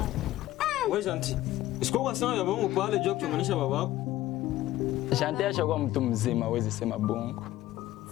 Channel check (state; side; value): quieter; right; 15.2 dB